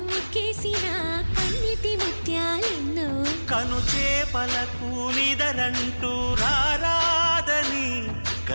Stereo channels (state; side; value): inverted; both; correlation -1.00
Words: ముక్కేసిన కన్నిటి ముత్యాలెన్నో కను చేపలకు నిదరంటూ రారాదని